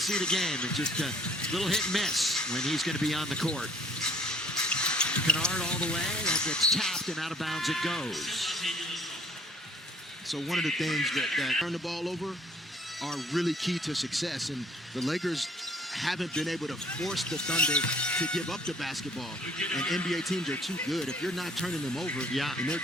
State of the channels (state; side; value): normal; both; correlation 0.58